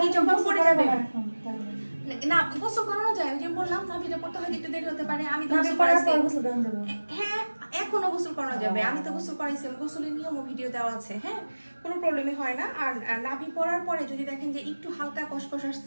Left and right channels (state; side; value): inverted; both; correlation -1.00